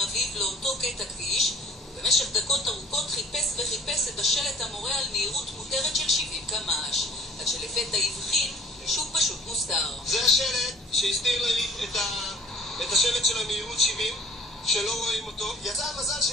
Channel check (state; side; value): normal; both; correlation 0.51